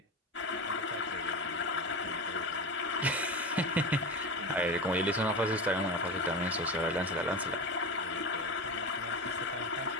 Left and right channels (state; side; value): normal; both; correlation 0.24